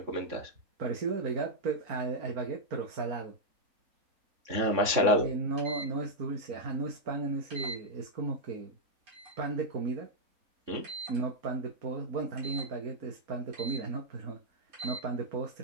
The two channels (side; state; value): left; late; 3.6 ms